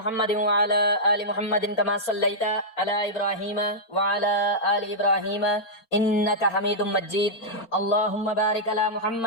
وعلی آل محمد کما صلیت علی ابراہیم وعلی آل ابراہیم انک حمید مجید۔ اللہم بارک علی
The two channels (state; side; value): late; right; 4.4 ms